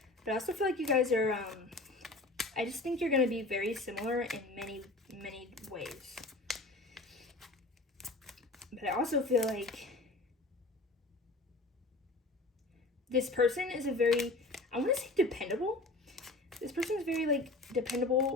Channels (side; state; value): right; quieter; 3.0 dB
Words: But I also feel like you guys are, I just think you're going to be very similar in many, many ways. But I also feel like this person is a very, I want to say dependable. This person is very, like,